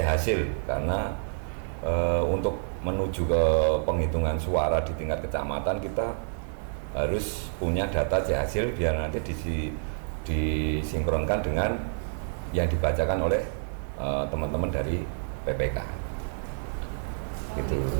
karena untuk menuju ke penghitungan suara di tingkat kecamatan kita harus punya data C hasil biar nanti disinkronkan dengan yang dibacakan oleh teman-teman dari PPK. Gitu.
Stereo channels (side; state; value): left; silent; 59 dB below the other